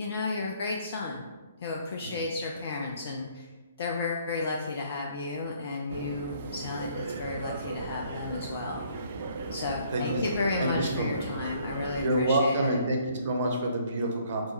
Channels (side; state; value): both; inverted; correlation -0.62